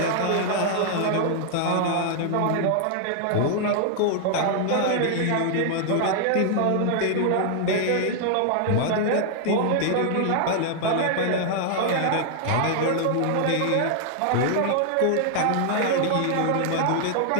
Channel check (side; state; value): both; different; correlation 0.00